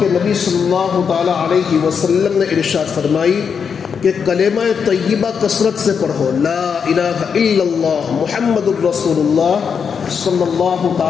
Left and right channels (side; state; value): right; quieter; 6.5 dB